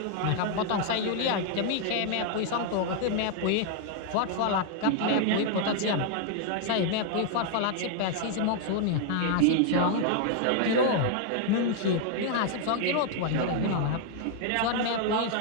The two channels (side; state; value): both; different; correlation 0.00